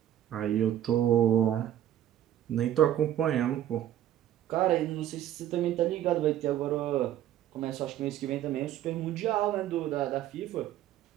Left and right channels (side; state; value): left; quieter; 11.7 dB